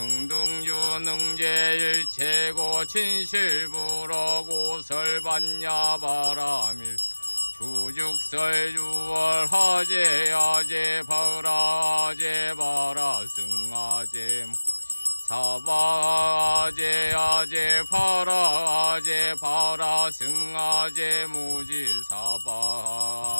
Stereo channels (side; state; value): both; inverted; correlation -1.00